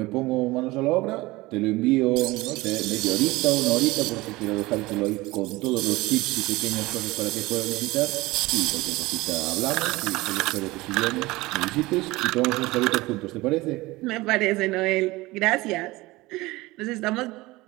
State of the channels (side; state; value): left; quieter; 20.6 dB